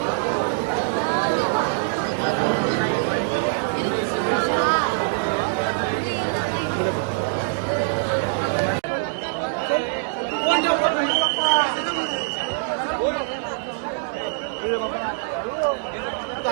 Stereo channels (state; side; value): silent; left; digital silence